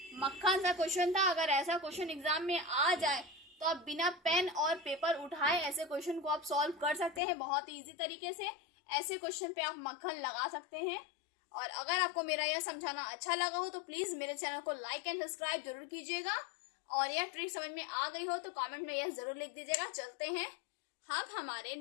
मक्खन सा क्वेश्चन था। अगर ऐसा क्वेश्चन एग्जाम में आ जाए तो आप बिना पेन और पेपर उठाए ऐसे क्वेश्चन को आप सॉल्व कर सकते हैं बहुत ही इजी तरीके से। ऐसे क्वेश्चन पे आप मक्खन लगा सकते हैं। और अगर आपको मेरा यह समझाना अच्छा लगा हो तो प्लीज मेरे चैनल को लाइक एंड सब्सक्राइब जरूर कीजिएगा, और यह ट्रिक समझ में आ गई हो तो कमेंट में यह जरूर लिख दीजिएगा। चलते हैं हम हमारे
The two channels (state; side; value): drops out; right; at 7.2 s